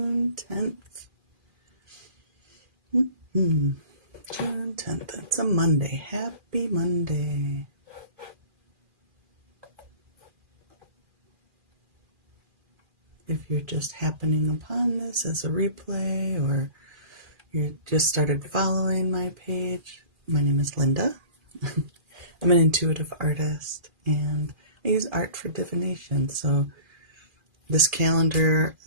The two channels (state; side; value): late; left; 2.4 ms